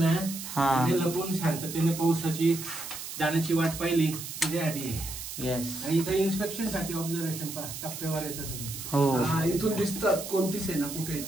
लपून शांततेने पावसाची जाण्याची वाट पाहिली त्याच्यासाठी. येस. आणि इथं इन्स्पेक्शन साठी ऑब्झर्वेशन टप्प्यावर येतात. हो इथून दिसतात कोणती सेना कुठे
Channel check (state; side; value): noise; right; hiss, 9 dB below the sound